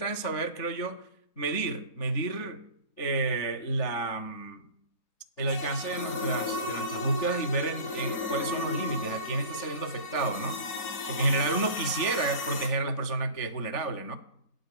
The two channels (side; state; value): right; late; 3.5 ms